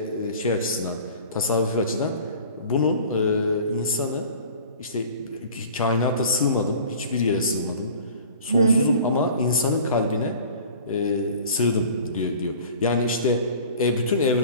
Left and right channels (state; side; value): inverted; both; correlation -0.44